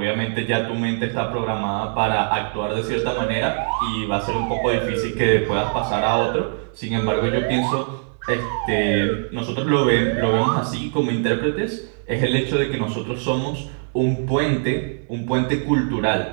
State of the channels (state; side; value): silent; left; 64 dB below the other